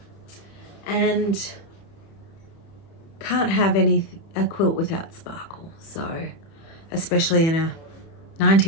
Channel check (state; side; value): late; right; 30 ms